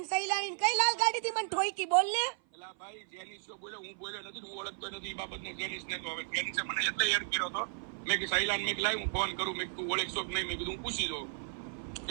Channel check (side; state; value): left; silent; 55 dB below the other